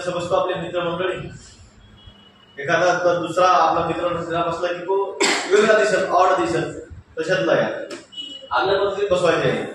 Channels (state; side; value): identical; both; correlation 1.00